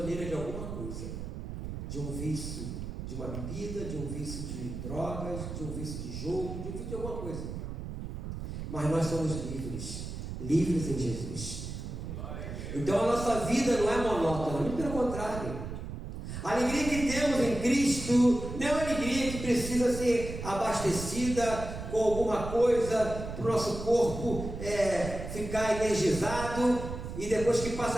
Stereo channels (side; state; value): right; noise; rumble, 7 dB below the sound